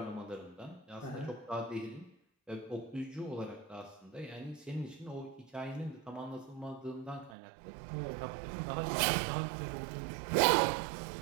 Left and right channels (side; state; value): left; drops out; at 7.4 s